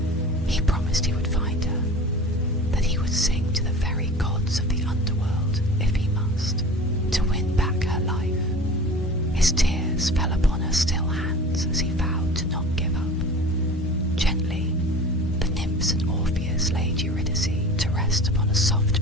He promised he would find her, that he would sing to the very gods of the Underworld if he must, to win back her life. His tears fell upon her still hands as he vowed to not give up. Gently, the nymphs and Orpheus laid Eurydice to rest upon a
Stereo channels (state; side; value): normal; both; correlation 0.39